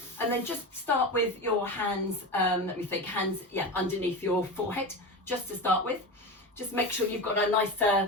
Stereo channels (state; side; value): normal; both; correlation 0.24